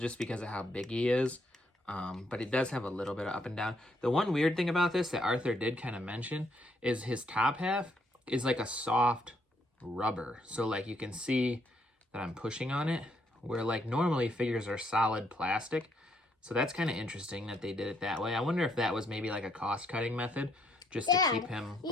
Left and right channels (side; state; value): both; normal; correlation 0.72